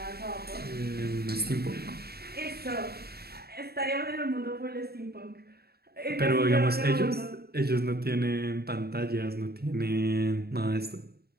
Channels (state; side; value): late; left; 0.46 ms